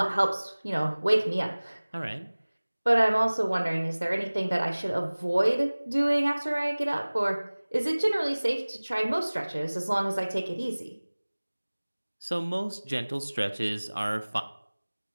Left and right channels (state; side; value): inverted; both; correlation -1.00